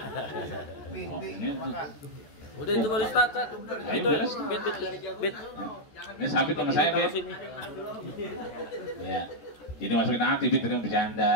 Bing, Oh, bing, ini tuh. makan. Udah itu baru start. Ayo, Itu beres. bit. Ini sabit sama saya bit. Sini. Ya. Jadi masukin hati bit tadi mau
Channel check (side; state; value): right; late; 14 ms